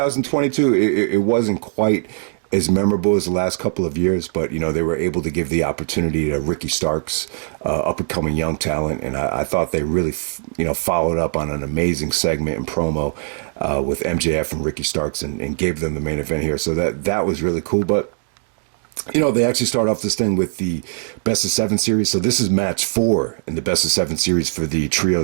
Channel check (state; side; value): silent; left; digital silence